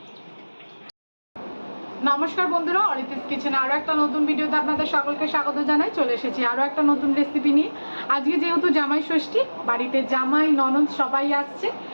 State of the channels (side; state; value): both; inverted; correlation -1.00